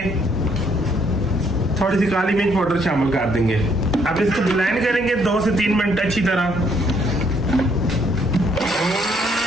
थोड़ी सी काली मिर्च पाउडर शामिल कर देंगे। अब इसको ब्लेंड करेंगे 2 से 3 मिनट अच्छी तरह।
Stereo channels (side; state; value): both; normal; correlation 0.68